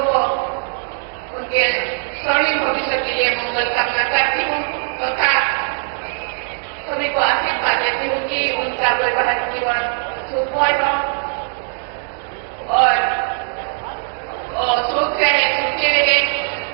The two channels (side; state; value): left; silent; 57 dB below the other